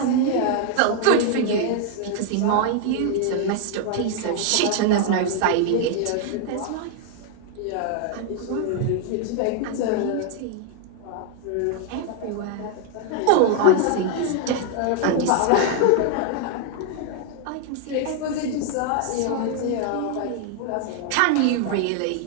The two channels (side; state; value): both; different; correlation 0.00